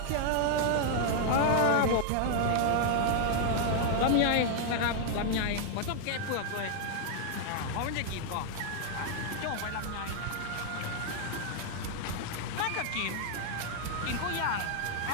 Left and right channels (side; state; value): both; different; correlation 0.00